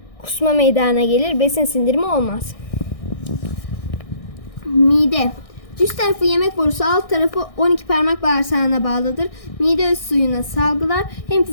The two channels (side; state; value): right; late; 1.6 ms